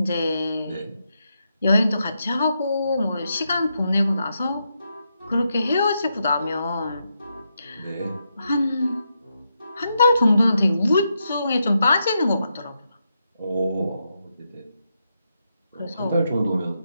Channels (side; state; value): both; inverted; correlation -0.83